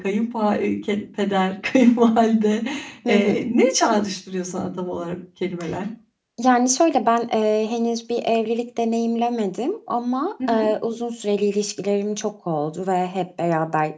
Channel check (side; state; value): both; identical; correlation 1.00